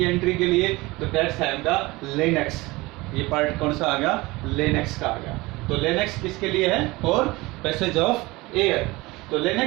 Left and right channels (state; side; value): quieter; left; 21.7 dB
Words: एंट्री के लिए, तो that's have the larynx। ये पार्ट कौन सा आ गया, larynx का आ गया। तो larynx किसके लिए है, और पैसेज ऑफ एयर। तो